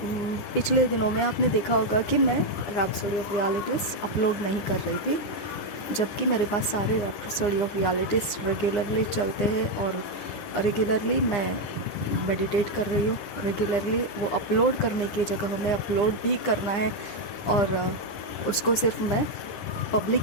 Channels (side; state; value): right; late; 9.8 ms